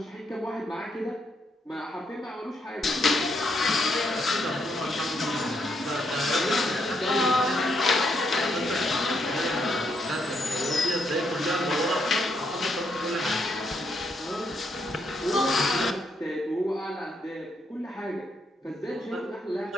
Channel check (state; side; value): normal; both; correlation 0.76